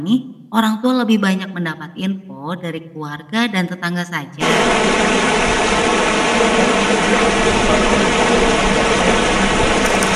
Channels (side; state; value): both; identical; correlation 1.00